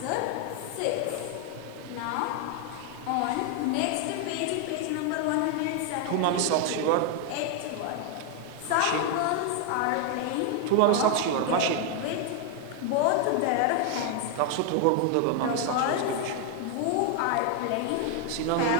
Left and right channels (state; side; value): different; both; correlation 0.00